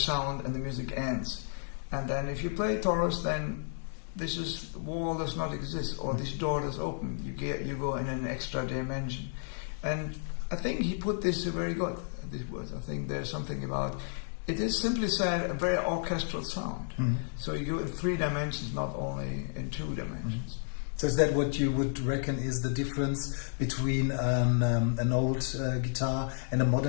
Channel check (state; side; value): silent; right; digital silence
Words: and the music ends. And then if you play Torres, then this wall does not exist, or this door does open. You go in an extra dimension. And I think he put this very good, these words. I think there's something about It is simply said a very orchestral sound. So you go in 3 dimensions, not only in 2 dimensions. So is that what you would reckon is the difference between an old guitar and a